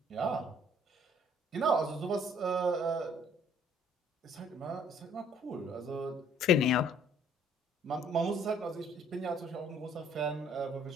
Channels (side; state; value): both; normal; correlation 0.60